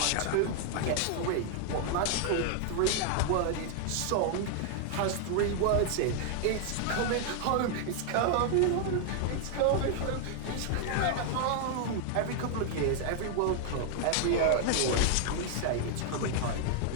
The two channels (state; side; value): different; both; correlation 0.00